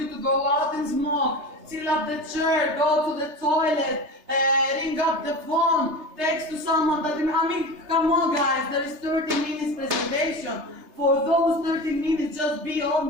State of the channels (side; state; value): left; late; 3.3 ms